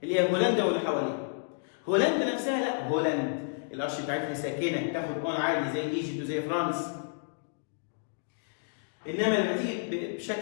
اللي هي هولندا واللي حواليها. هولندا نفسها لا، هولندا القرش بتاعتها ساكنه تاخد اون عادي زي ايجيبت وزي فرنسا. انما لما تيجي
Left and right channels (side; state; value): right; silent; digital silence